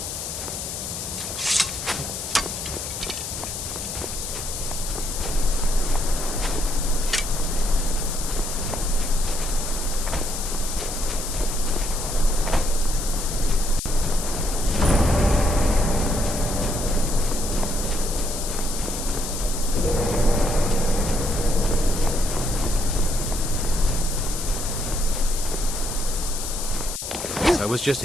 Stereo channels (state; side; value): noise; left; hiss, 6 dB below the sound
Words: I was just